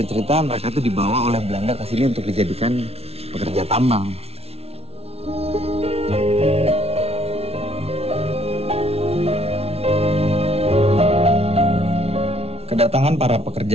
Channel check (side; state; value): left; late; 0.30 ms